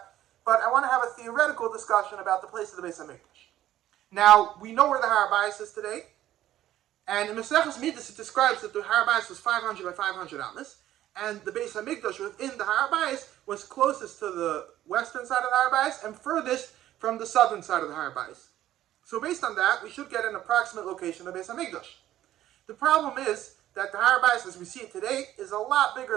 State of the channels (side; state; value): left; quieter; 13.2 dB